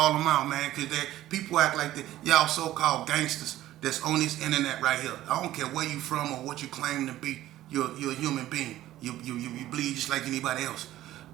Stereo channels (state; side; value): quieter; left; 14.3 dB